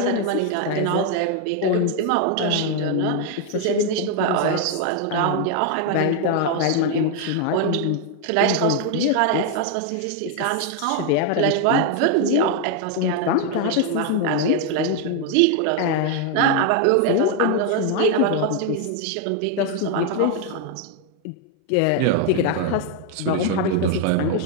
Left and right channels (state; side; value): different; both; correlation 0.01